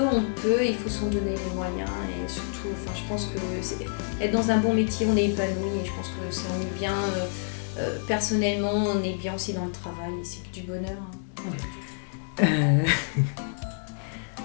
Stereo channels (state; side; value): silent; right; digital silence